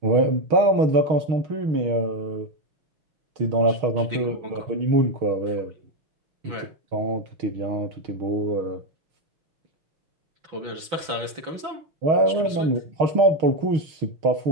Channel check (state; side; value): late; left; 6.0 ms